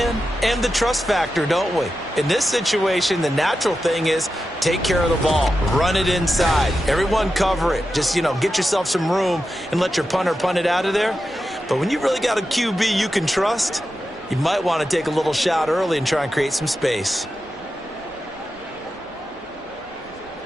and the trust factor, don't we? In this situation, the natural thing is take care of the ball, run it inside. Everyone cover it. Just, get yourself some room and let your punter punt it out of there. But when you really got a QB you can trust, you might want to take a little shot early and try and create some space.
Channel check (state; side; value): normal; both; correlation 0.90